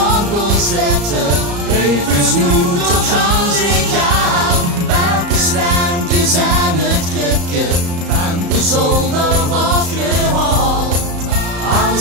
kon zetten, even snoet tot gaan zich aan. Welke slijmpjes zijn het kripje van de zolder afgehaald.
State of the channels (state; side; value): late; left; 34 ms